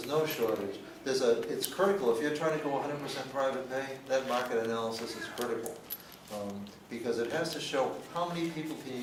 no shortage. It's critical. If you're trying to go 100% private pay, that market analysis is critical, because it has to show how many people can you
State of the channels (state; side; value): identical; both; correlation 1.00